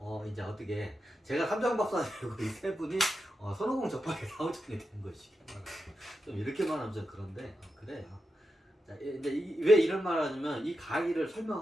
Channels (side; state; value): both; normal; correlation 0.88